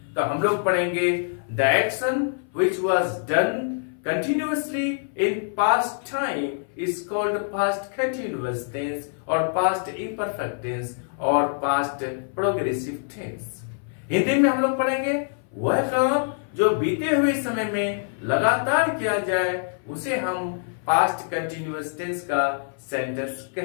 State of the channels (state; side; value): silent; right; 59 dB below the other